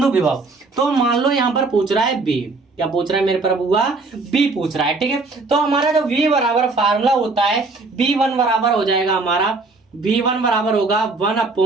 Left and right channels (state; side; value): quieter; left; 3.7 dB